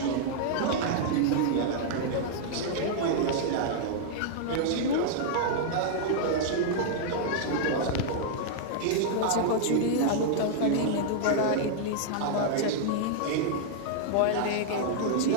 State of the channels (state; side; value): different; both; correlation -0.01